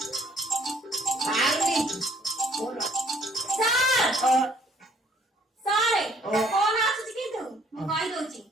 ସାର୍ କଣ ଆସୁଛି କିନ୍ତୁ ମୁଁ କହିଦଉଛି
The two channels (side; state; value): both; normal; correlation 0.61